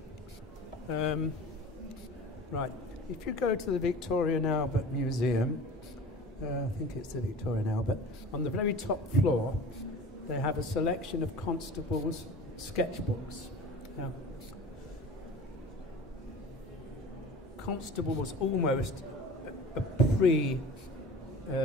Right. If you go to the Victoria and Albert Museum, I think it's the Victoria and Albert, on the very top floor, they have a selection of Constable's sketchbooks. Now, Constable was almost a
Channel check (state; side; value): normal; both; correlation 0.39